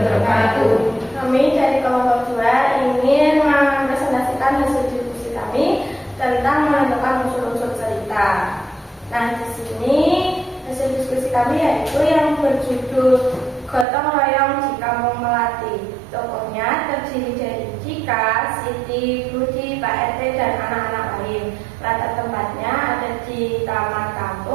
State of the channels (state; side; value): drops out; left; at 13.9 s